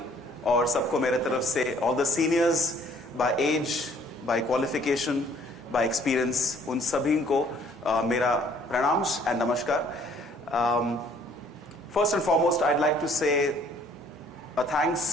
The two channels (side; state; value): both; normal; correlation 0.60